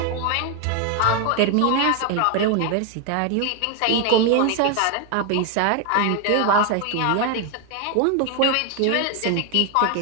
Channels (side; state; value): both; different; correlation 0.01